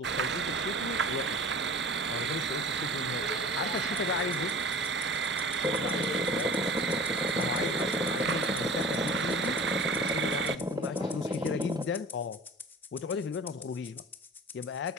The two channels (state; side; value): normal; both; correlation 0.41